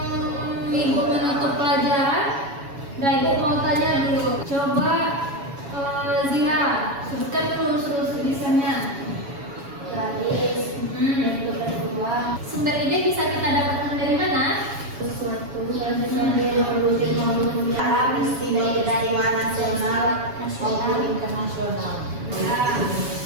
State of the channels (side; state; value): left; late; 7.2 ms